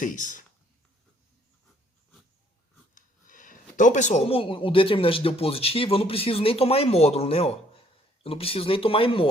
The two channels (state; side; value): normal; both; correlation 0.64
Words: Então, pessoal, como o determinante deu positivo, eu não preciso nem tomar em módulo, né? Ó. Eu não preciso nem tomar em